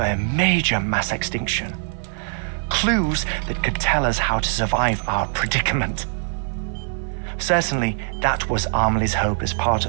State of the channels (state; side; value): silent; left; 56 dB below the other